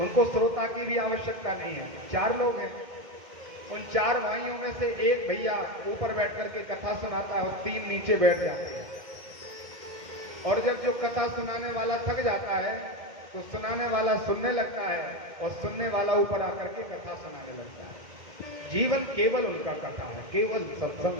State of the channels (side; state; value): left; late; 2.1 ms